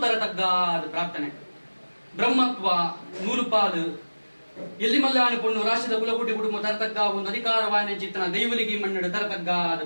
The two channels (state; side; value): inverted; both; correlation -1.00